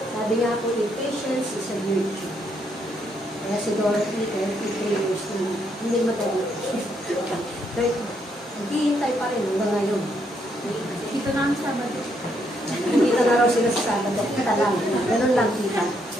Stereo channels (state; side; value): normal; both; correlation 0.74